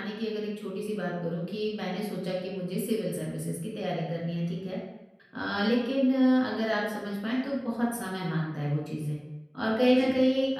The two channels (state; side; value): identical; both; correlation 1.00